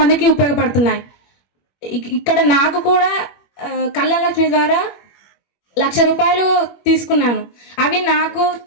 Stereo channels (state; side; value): late; right; 21 ms